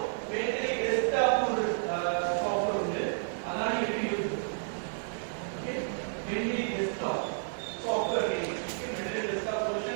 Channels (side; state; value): left; silent; digital silence